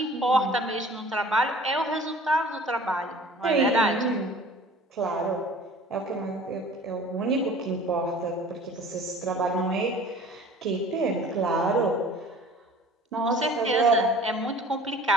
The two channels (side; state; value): both; normal; correlation 0.47